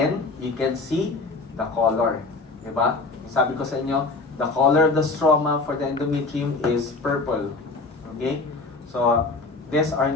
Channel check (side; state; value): right; quieter; 3.7 dB